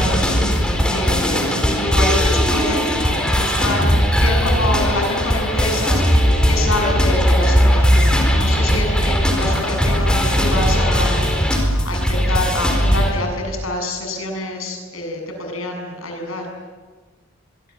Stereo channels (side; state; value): both; normal; correlation 0.72